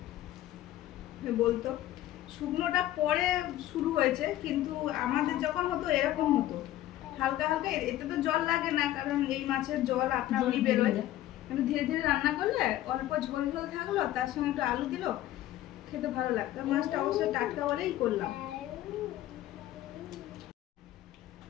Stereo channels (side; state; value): right; quieter; 14.0 dB